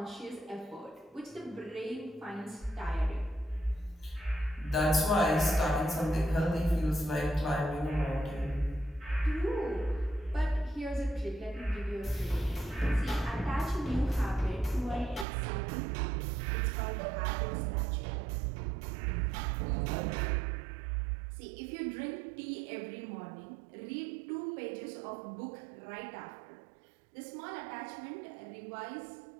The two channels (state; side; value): drops out; left; at 15.2 s